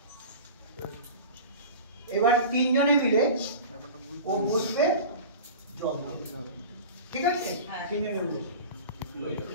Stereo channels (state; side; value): inverted; both; correlation -0.35